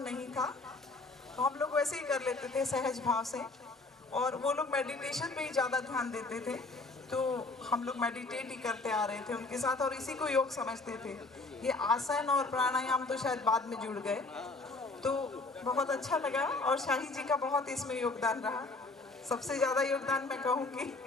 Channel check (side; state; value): right; quieter; 3.4 dB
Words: नहीं था, तो हम लोग वैसे ही कर लेते थे सहज भाव से, और वो लोग मेडिटेशन पे ही ज़्यादा ध्यान देते थे, तो हम लोग मेडिटेट ही करते आ रहे थे उनके साथ, और इसी को योग समझते थे। ये आसन और प्राणायाम तो शायद बाद में जुड़ गए, तो बहुत अच्छा लगा, और शाही जी का बहुत इसमें योगदान रहा। सबसे ज़्यादा योगदान मैं कहूँगी